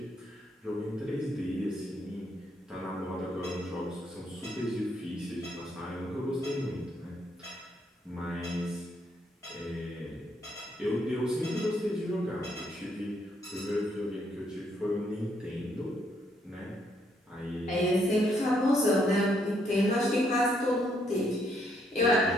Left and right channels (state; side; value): normal; both; correlation 0.73